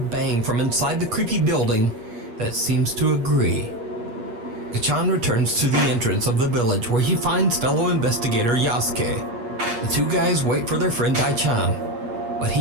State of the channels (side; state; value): left; late; 8.5 ms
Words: bang from inside the creepy building that seems to agree. Gachan returns to the entrance of the village where he finds fellow investigator Yasuke. The two guys wait for their friend Dai-chan, but